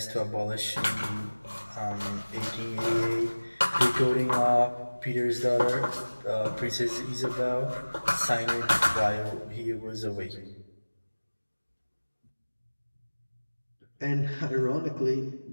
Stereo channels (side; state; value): both; inverted; correlation -1.00